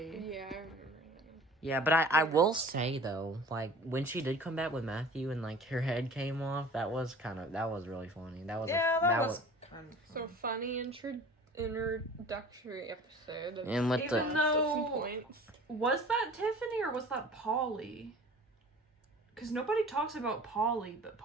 Yeah, I remember that. Yeah, but I will say though, like when she did come back with Matthew and like her head came off, that was really funny. That was that was kind of So funny introductory episode. Of And with Even the though- some points. Was that Tiffany or was that Polly? Because nobody talks about Polly, but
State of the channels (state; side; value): normal; both; correlation 0.44